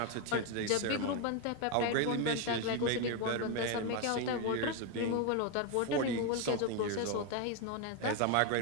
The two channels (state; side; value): different; both; correlation 0.02